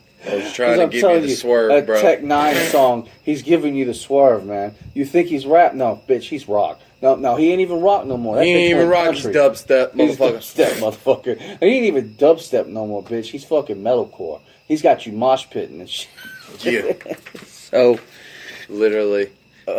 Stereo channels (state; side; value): identical; both; correlation 1.00